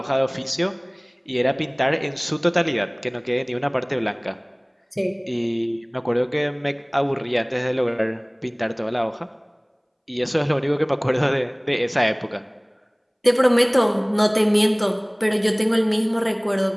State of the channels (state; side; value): identical; both; correlation 1.00